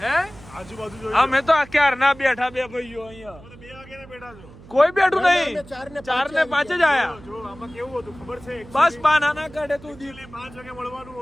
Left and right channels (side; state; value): right; noise; hum, 20 dB below the sound